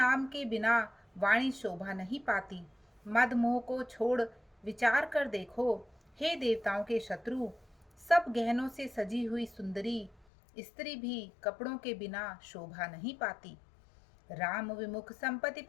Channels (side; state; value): right; drops out; at 10.2 s